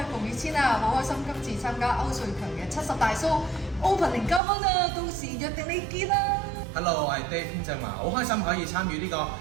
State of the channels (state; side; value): drops out; left; at 4.4 s